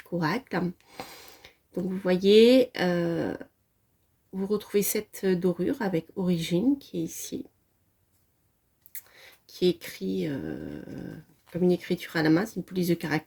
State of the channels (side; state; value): both; identical; correlation 1.00